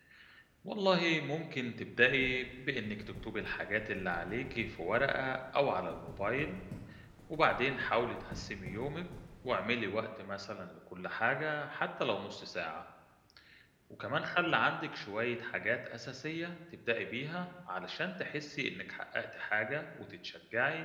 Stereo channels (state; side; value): identical; both; correlation 1.00